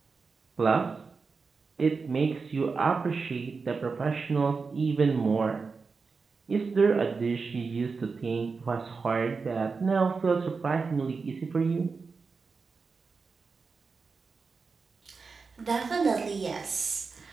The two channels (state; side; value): quieter; left; 4.7 dB